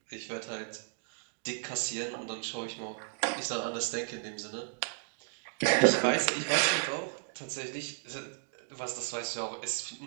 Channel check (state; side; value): silent; left; digital silence